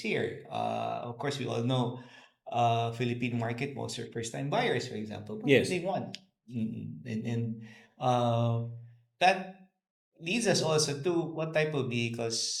Of course, we all know Philippine market, most are first-time buyers, for example. What do Yes, they want? And uh, that leads us also to what type of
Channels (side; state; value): both; identical; correlation 1.00